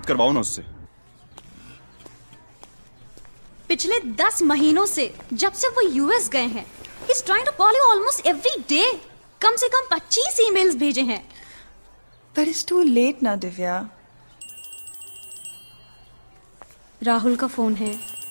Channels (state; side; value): inverted; both; correlation -1.00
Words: करवाओ ना उससे। पिछले 10 महीनों से जब से वो यूएस गए हैं, he's trying to call you almost every day. कम से कम 25 ईमेल्स भेजे हैं। But it's too late now, Divya. Rahul का फोन है।